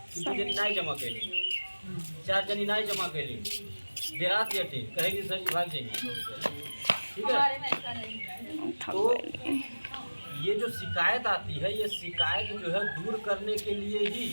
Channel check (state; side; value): inverted; both; correlation -1.00